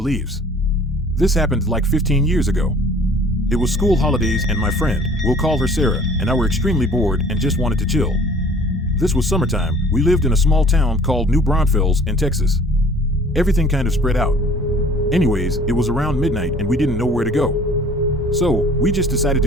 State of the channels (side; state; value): both; normal; correlation 0.51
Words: This happened like 15 years ago. It was school holidays and my friend, we'll call her Sarah, and I were extremely bored and just wanted to chill. This was summertime. We lived in a small town called New Braunfels in Texas. Everything kind of spread out. Anyways, it was around midnight and we didn't know where to go. So, we just decided